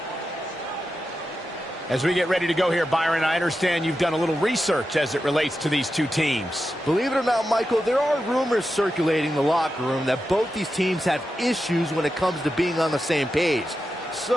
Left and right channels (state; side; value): normal; both; correlation 0.90